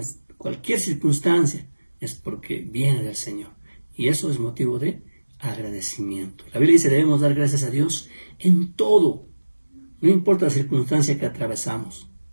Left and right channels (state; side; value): inverted; both; correlation -1.00